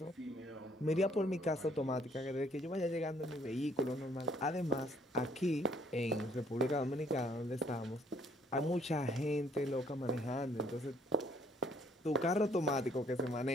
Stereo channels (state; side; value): normal; both; correlation 0.64